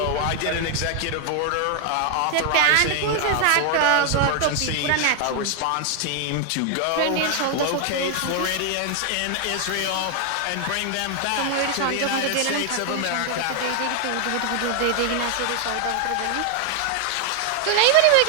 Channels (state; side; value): different; both; correlation 0.00